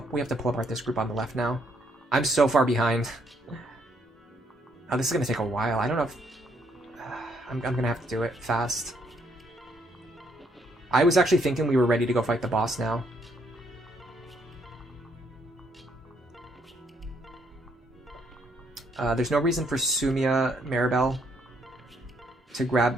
this group on the left now. I'm so far behind. Oh, this is going to take a while. I don't know if... I'm going to have to do it fast. I was actually thinking we were ready to go fight the boss now. There's no reason for Sumia Maribel to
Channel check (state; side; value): normal; both; correlation 0.71